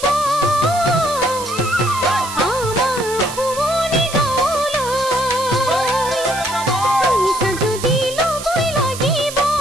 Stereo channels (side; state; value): right; noise; hiss, 11 dB below the sound